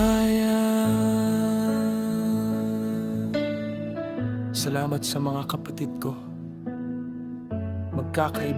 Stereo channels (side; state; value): both; identical; correlation 1.00